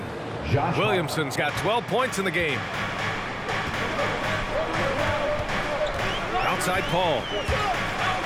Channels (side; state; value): both; identical; correlation 1.00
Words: Williamson's got 12 points in the game. Outside Paul.